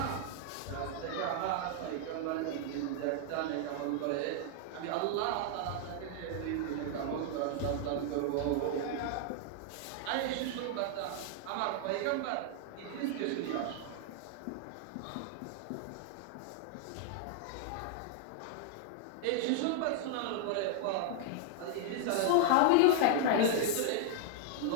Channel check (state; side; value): different; both; correlation 0.00